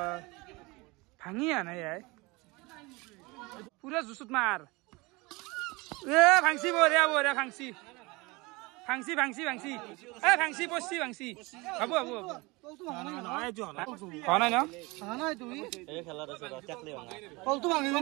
ভাঙি আনা ইয়াই পুরা জুসুত মার এ ভাঙছি বঢ়িয়া বঢ়িয়া ভাঙছি ভাঙছি ভাঙছি ভাঙছি এ ভাঙছি পড়ছি ভাঙছি হব হব হব হয় না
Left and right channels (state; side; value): quieter; left; 24.5 dB